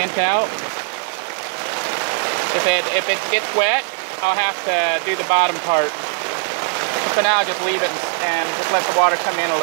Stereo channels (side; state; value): left; silent; 56 dB below the other